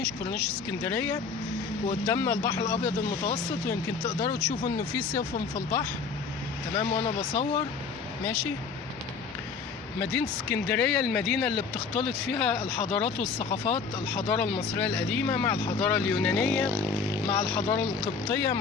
اسكندرية، وقدامنا البحر الابيض المتوسط، ويمكن تقدروا تشوفوا انه في سفن في البحر، تمام. وانا بصور ماشي. مدينة اسكندرية المدينة اللي بتختلط فيها الحضارات والثقافات، الحضارة المصرية القديمة مع الحضارة اليونانية مع الحضارة القبطية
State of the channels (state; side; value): quieter; right; 5.2 dB